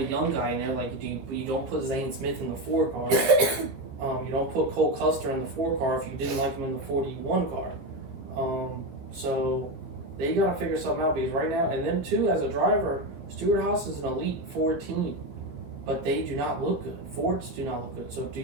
young guy in there. Like, you don't put Zane Smith in the 4 car. You don't put Cole Custer in the 4 car if you didn't like him in the 41 car. So they got to figure something out, because right now, and then too, as a driver, Stewart-Haas is an elite Ford team, but they do not look good. Fords do not look good. So do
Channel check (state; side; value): late; left; 15 ms